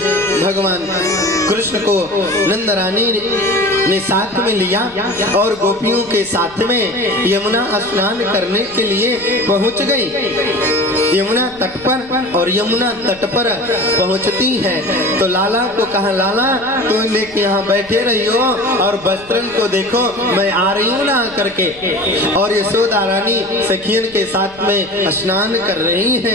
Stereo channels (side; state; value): left; noise; rumble, 24 dB below the sound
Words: भगवान कृष्ण को नंद रानी ने साथ में लिया और गोपियों के साथ में यमुना स्नान करने के लिए पहुंच गई यमुना तट पर। और यमुना तट पर पहुंचती है तो लाला को कहा, लाला तुम लेके यहाँ बैठे रही हो और वस्त्रन को देखो, मैं आ रही हूँ ना करके। और यशोदा रानी सखियन के साथ में स्नान कर रही